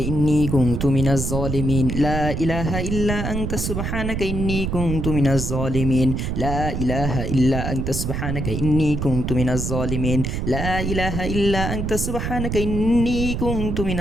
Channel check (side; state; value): right; noise; rumble, 2 dB below the sound